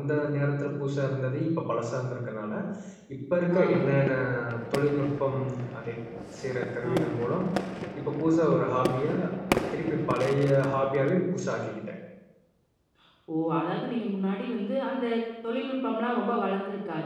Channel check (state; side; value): identical; both; correlation 1.00